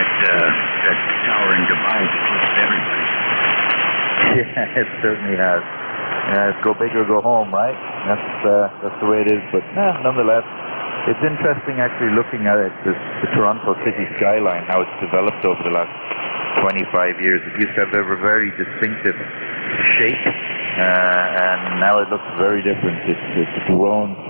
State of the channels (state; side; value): inverted; both; correlation -1.00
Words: that tower in Dubai that eclipsed everybody. Yeah, it certainly has. Go big or go home, right? That's the way it is. But nonetheless, it's interesting actually looking at it, the Toronto city skyline, how it's developed over the last 25 years. It used to have a very distinctive shape, and now it looks very different. It's grown